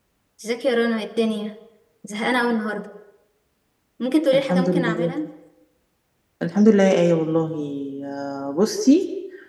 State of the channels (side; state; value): both; identical; correlation 1.00